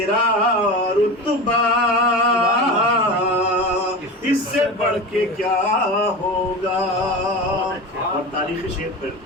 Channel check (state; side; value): normal; both; correlation 0.27